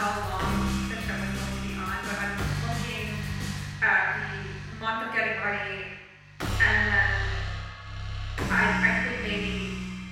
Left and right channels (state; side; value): identical; both; correlation 1.00